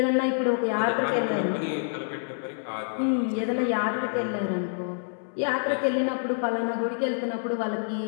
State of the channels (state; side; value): silent; right; 60 dB below the other